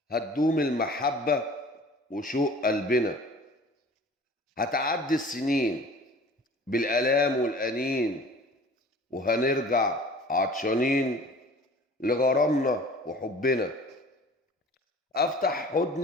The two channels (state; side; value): normal; both; correlation 0.45